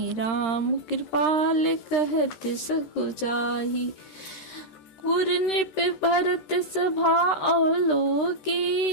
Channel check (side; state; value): right; late; 13 ms